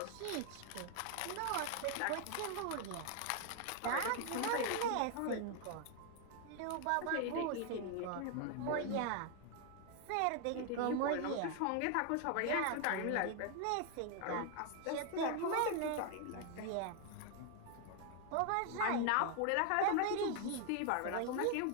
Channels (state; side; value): different; both; correlation 0.00